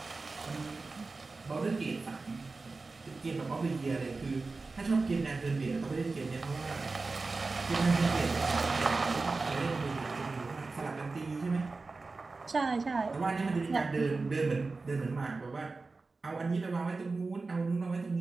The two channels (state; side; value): quieter; left; 3.8 dB